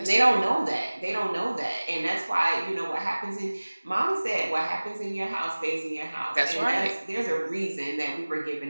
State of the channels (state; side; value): inverted; both; correlation -1.00